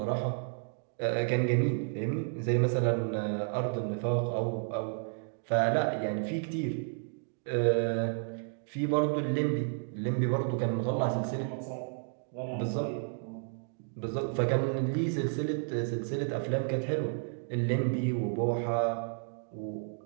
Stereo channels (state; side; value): silent; left; digital silence